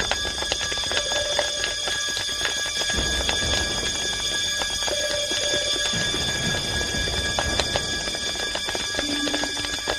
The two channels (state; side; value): identical; both; correlation 1.00